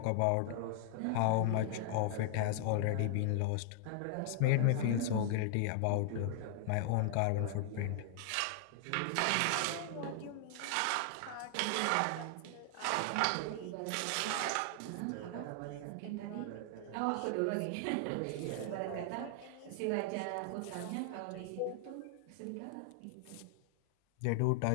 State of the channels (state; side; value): different; both; correlation 0.00